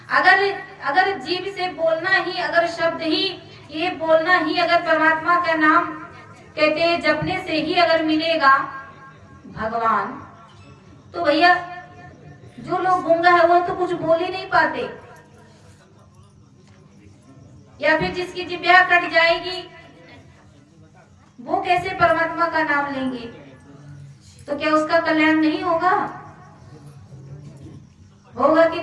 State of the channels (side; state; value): both; identical; correlation 1.00